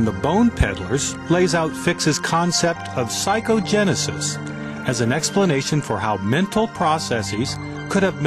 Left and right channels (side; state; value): both; identical; correlation 1.00